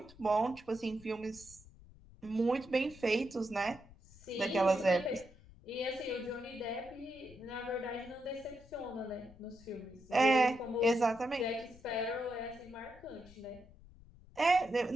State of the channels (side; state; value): left; noise; rumble, 22 dB below the sound